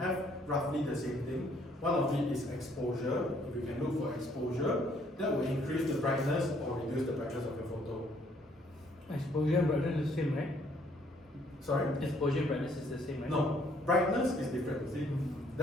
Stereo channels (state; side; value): normal; both; correlation 0.65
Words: roughly the same thing. One of it is exposure. If you can look for exposure, that will increase the brightness or reduce the brightness of your photo. Exposure and brightness is the same, right? Sorry? Exposure brightness is the same, right? No, brightness is different. See,